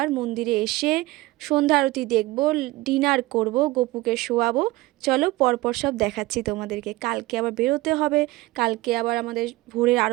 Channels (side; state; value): left; quieter; 19.7 dB